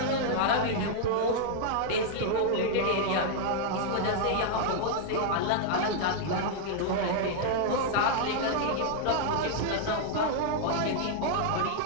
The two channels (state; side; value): different; both; correlation -0.01